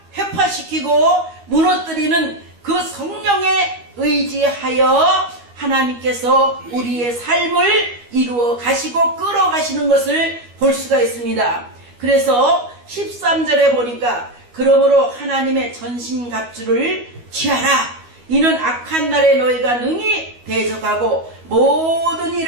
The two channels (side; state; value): left; late; 12 ms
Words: 회파시키고 무너뜨리는 그 성령에 의지하여 하나님께서 우리의 삶을 이루어 가시고 끌어가시는 것을 볼 수가 있습니다. 그래서 13절에 보니까 그러므로 하나님의 전신갑주를 취하라. 이는 악한 날에 너희가 능히 대적하고 모든